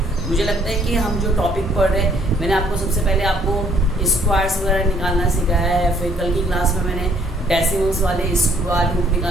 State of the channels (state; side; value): normal; both; correlation 0.63